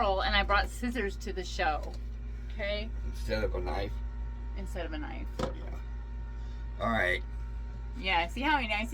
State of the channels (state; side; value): identical; both; correlation 1.00